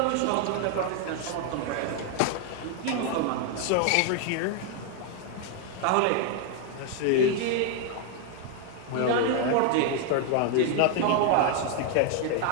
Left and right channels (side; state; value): both; different; correlation 0.00